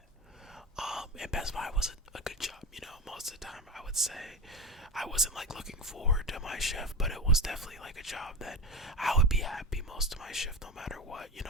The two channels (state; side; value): normal; both; correlation 0.22